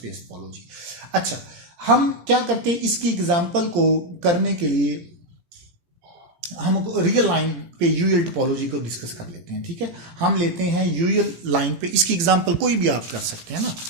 टोपोलॉजी। अच्छा, हम क्या करते हैं, इसकी एग्जांपल को करने के लिए हम रियल लाइन पे यूएल टोपोलॉजी को डिस्कस कर लेते हैं, ठीक है। हम लेते हैं यूएल लाइन पे, इसकी एग्जांपल कोई भी आप कर सकते हैं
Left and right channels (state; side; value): late; left; 17 ms